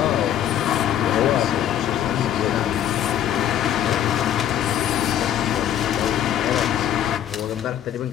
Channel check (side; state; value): right; quieter; 10.8 dB